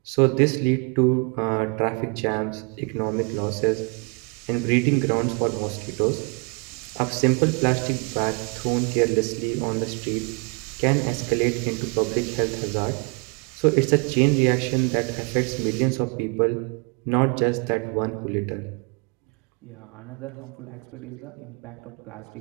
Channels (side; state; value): left; quieter; 33.7 dB